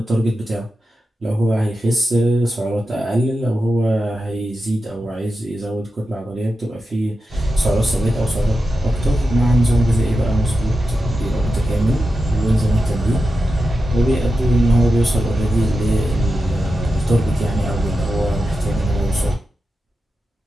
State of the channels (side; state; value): both; normal; correlation 0.90